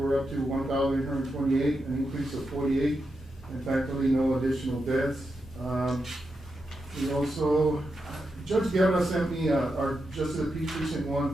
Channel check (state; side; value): normal; both; correlation 0.87